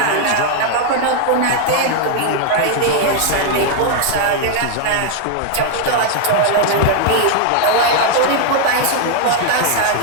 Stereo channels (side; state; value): both; different; correlation 0.00